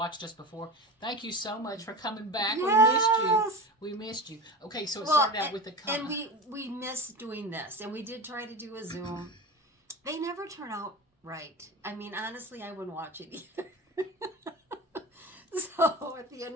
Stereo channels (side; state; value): both; normal; correlation 0.30